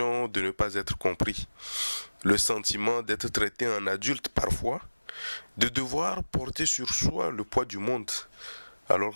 de ne pas être compris, le sentiment d'être traité en adulte parfois, de devoir porter sur soi le poids du monde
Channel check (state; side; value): inverted; both; correlation -1.00